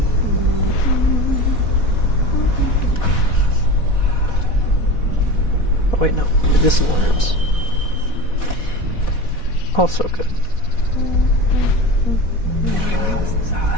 Oh wait, no. Medicinal herbs. Also good.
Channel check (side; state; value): right; late; 4.1 ms